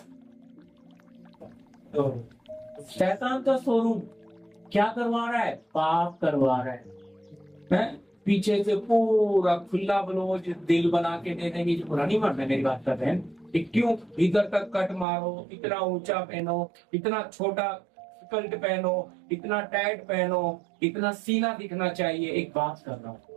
तो शैतान का शोरूम। क्या करवा रहा है, पाप करवा रहा है? पीछे से पूरा खुला ब्लाउज दिल बना के दे देंगे। पूरा नहीं मारना, मेरी बात कर रहे हैं, क्यों इधर तक कट मारो, इतना ऊंचा पहनो, इतना छोटा स्कर्ट पहनो, इतना टाइट पहनो, इतना सीना दिखना चाहिए। एक बात कर रहा हूं,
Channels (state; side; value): drops out; left; at 15.1 s